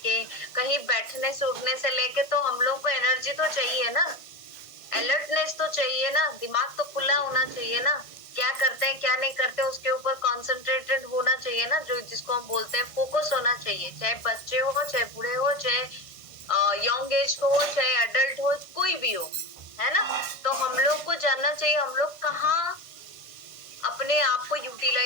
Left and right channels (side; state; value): right; late; 1.5 ms